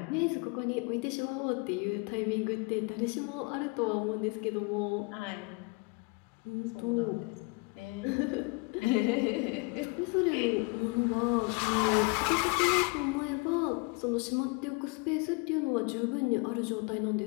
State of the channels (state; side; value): quieter; right; 28.9 dB